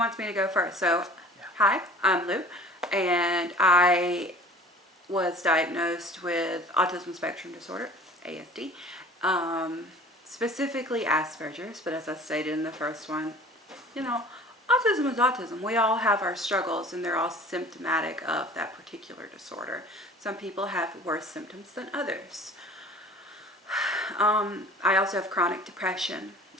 me to go first. So, Yeah. Hi, I'm Lou, and I was diagnosed with autism spectrum disorder, ASD, specifically Asperger's, but as I stated in the first one, autism is autism. We all have our struggles, and they're all symptomatic of that particular disorder. Some people have worse symptoms than others. I also have chronic depression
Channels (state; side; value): normal; both; correlation 0.46